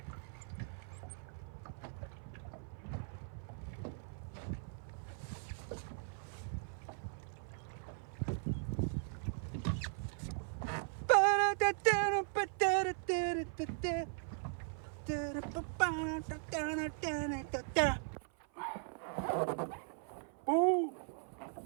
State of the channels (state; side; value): silent; left; 52 dB below the other